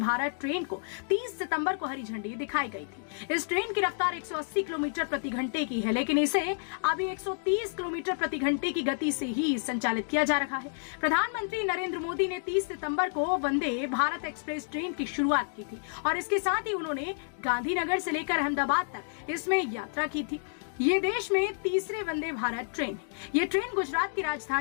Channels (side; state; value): right; silent; digital silence